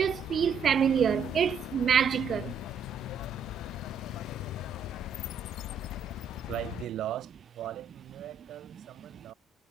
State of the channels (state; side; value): quieter; left; 5.4 dB